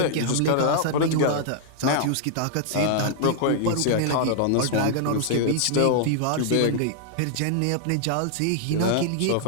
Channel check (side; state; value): both; different; correlation -0.01